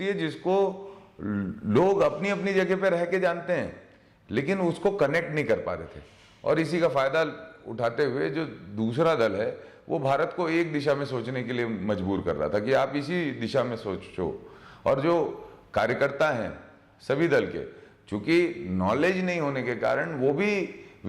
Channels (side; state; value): both; identical; correlation 1.00